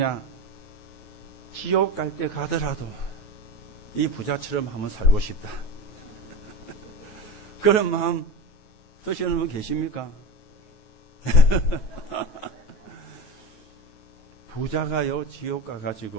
지옥 갈 때 가더라도 이 부자처럼 한번 살고 싶다. 그런 마음 드시는 분 계십니까? 부자가요, 지옥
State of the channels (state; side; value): late; right; 9.4 ms